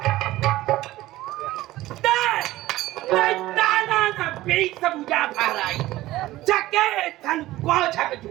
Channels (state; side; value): quieter; left; 16.6 dB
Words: बीच सब उजा भाराई चके धन को छक